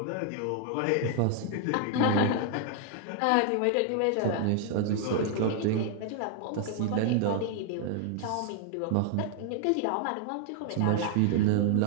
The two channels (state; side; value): different; both; correlation 0.00